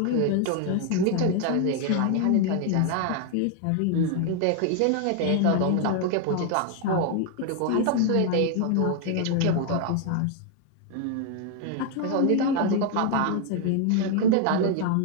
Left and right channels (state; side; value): different; both; correlation 0.00